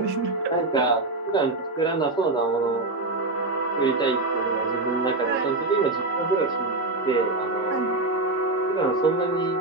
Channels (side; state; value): left; quieter; 3.0 dB